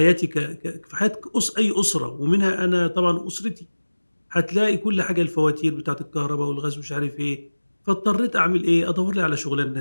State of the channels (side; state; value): both; inverted; correlation -1.00